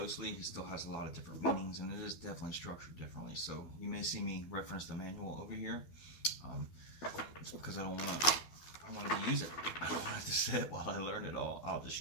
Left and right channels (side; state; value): right; late; 12 ms